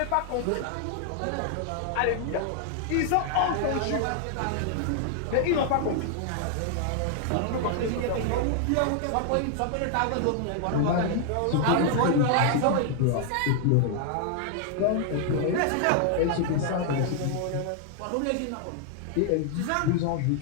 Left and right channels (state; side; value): different; both; correlation 0.00